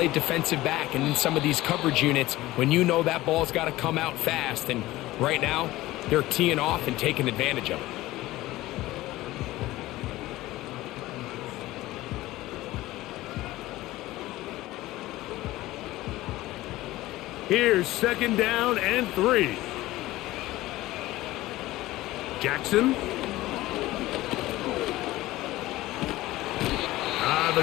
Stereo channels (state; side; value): quieter; right; 17.3 dB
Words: defensive back and in some of these coverage units when you know that ball's got to come out fast, and right now they're teeing off and taking advantage of it. Here's 2nd down and 3. Jackson. The